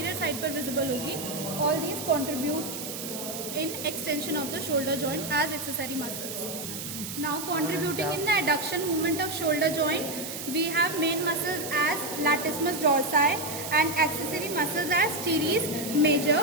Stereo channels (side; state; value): right; noise; hiss, 7 dB below the sound